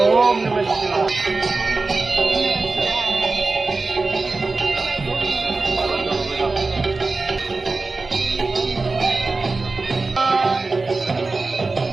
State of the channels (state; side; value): quieter; left; 3.7 dB